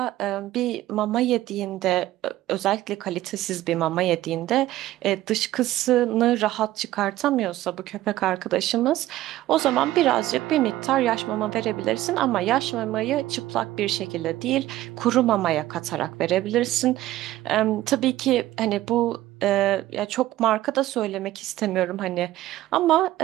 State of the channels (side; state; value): left; quieter; 15.1 dB